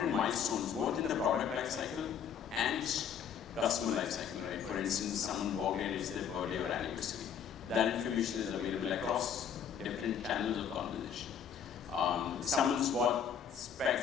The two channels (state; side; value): quieter; right; 7.9 dB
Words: milestones, both in the product life cycle and customer life cycle, right? For instance, someone walked in, it's their birthday or anniversary. That information is available across different channels of conversation. Someone's bought